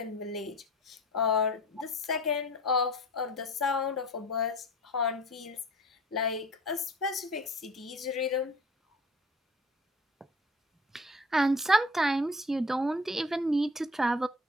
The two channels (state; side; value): normal; both; correlation 0.44